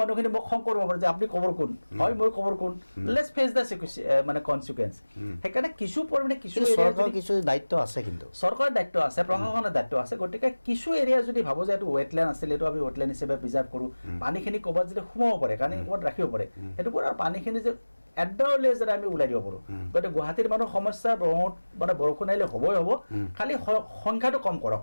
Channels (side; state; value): both; inverted; correlation -1.00